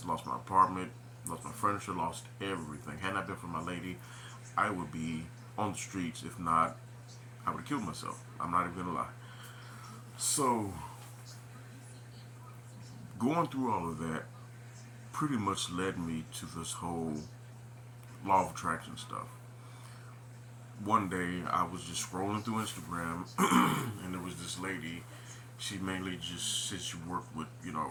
lost my apartment, lost my furniture, lost everything. Had not been for my lady, I would be on the streets. If not, I would have killed myself. I'm not even gonna lie. So, going through all of that pretty much led me to this whole law of attraction stuff. One day I was just scrolling through Instagram and there was this lady. She mainly just said she worked with,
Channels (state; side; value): identical; both; correlation 1.00